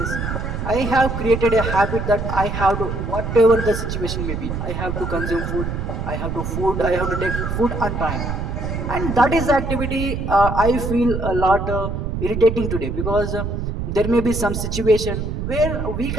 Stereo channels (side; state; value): right; noise; rumble, 3 dB below the sound